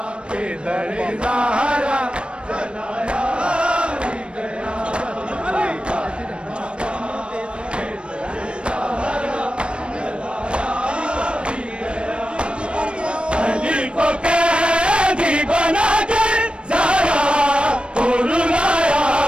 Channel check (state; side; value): late; left; 0.057 ms